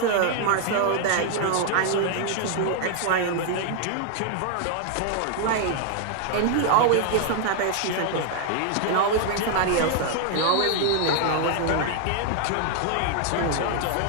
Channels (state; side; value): different; both; correlation 0.00